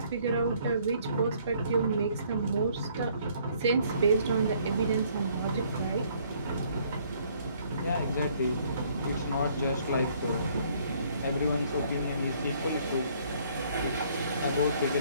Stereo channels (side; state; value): both; inverted; correlation -0.63